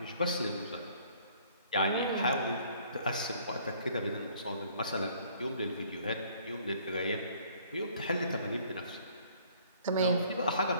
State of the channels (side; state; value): both; inverted; correlation -0.58